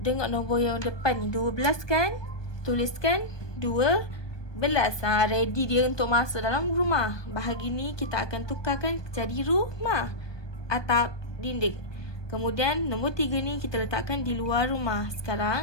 nombor yang depan ni, 12 kan? Tuliskan 12. Ready dia untuk masuk dalam rumah. Bahagi ni kita akan tukarkan jadi rumah. Atap, dinding. Kemudian nombor 3 ni kita letakkan di luar rumah.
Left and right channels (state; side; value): late; right; 1.2 ms